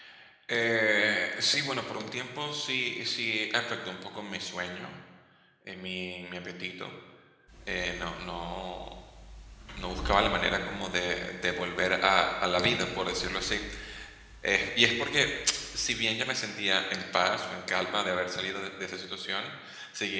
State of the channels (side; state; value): both; identical; correlation 1.00